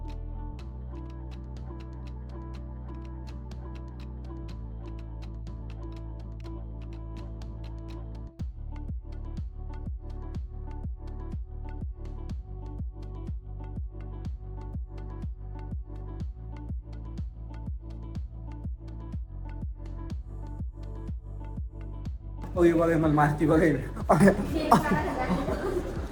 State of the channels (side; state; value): both; identical; correlation 1.00